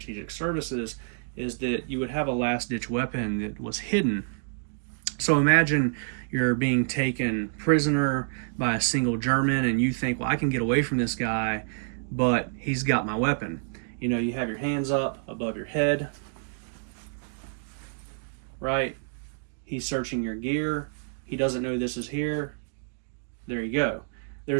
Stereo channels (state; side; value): silent; left; digital silence